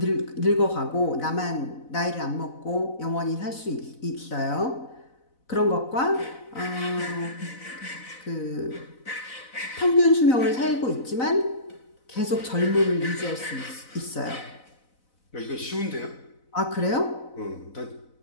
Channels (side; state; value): right; late; 4.0 ms